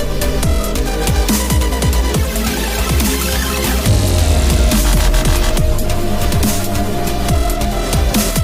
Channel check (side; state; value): both; identical; correlation 1.00